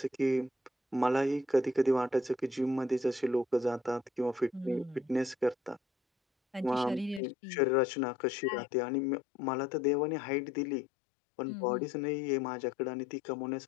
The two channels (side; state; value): right; drops out; at 7.2 s